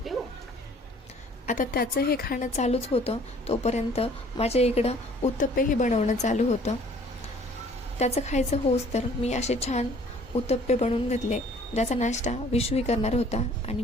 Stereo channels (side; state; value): both; normal; correlation 0.55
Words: देऊ. आता त्याचं हे खाणं चालूच होतं, तोपर्यंत माझ्या इकडं उत्तप्पेही बनवणं चालू होतं. त्याचं खायचं होस तर मी असे छान उत्तप्पे बनवून घेतले, ज्याचा नाश्ता विशूही करणार होता आणि